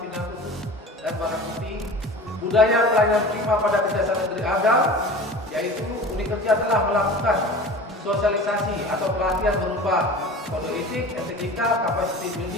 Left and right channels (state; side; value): normal; both; correlation 0.37